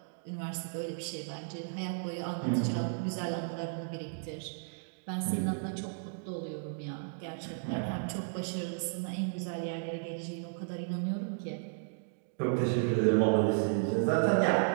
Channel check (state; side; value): silent; left; digital silence